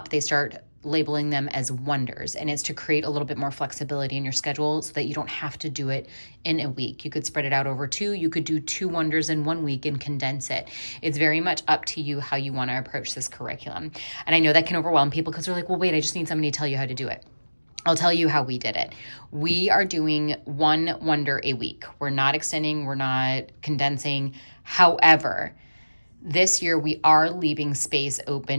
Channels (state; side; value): inverted; both; correlation -1.00